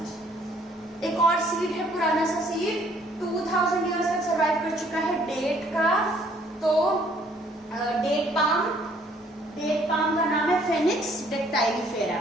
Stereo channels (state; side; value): normal; both; correlation 0.62